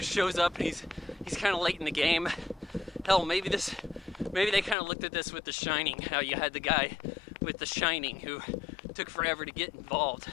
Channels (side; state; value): right; drops out; at 4.8 s